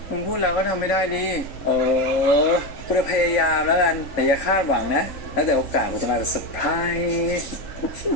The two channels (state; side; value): late; right; 3.6 ms